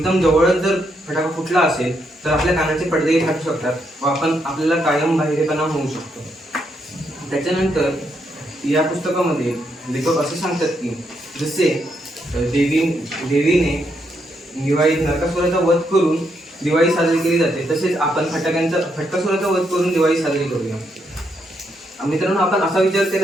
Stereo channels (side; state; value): both; normal; correlation 0.78